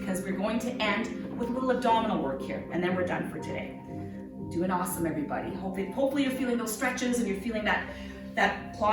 we're going to end with a little abdominal work here, and then we're done for today. Doing awesome, everybody. Hopefully you're feeling those stretches and you're feeling that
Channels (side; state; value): both; identical; correlation 1.00